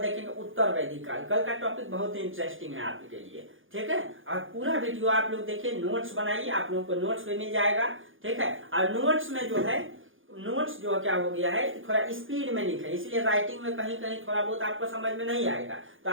उत्तर वैदिक काल। कल का टॉपिक बहुत ही इंटरेस्टिंग है आपके लिए, ठीक है। और पूरा वीडियो आप लोग देखिए, नोट्स बनाइए, आप लोगों को नोट्स भी मिल जाएगा, ठीक है। और नोट्स में जो है, नोट्स जो क्या हो गया है, थोड़ा स्पीड में लिखे, इसलिए राइटिंग में कहीं कहीं थोड़ा बहुत आपको समझ में नहीं आएगा, तो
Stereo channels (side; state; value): left; late; 0.58 ms